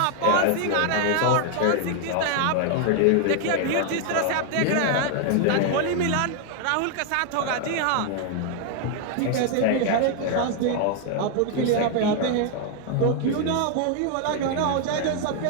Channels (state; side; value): different; both; correlation 0.00